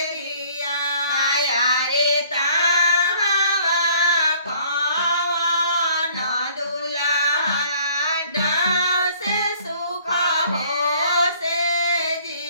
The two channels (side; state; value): both; inverted; correlation -0.57